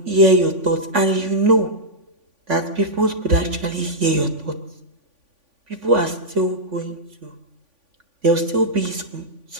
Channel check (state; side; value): late; left; 3.5 ms